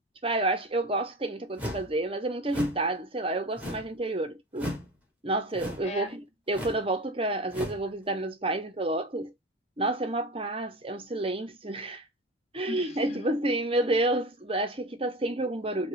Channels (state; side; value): normal; both; correlation 0.30